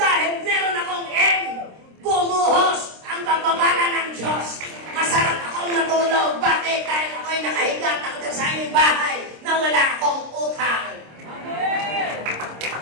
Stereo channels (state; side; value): late; left; 26 ms